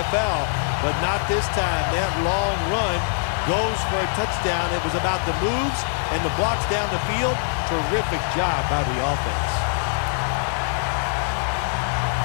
but not this time. That long run goes for a touchdown. It was about the moves and the blocks down the field. Terrific job by the offense.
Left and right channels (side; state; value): right; silent; digital silence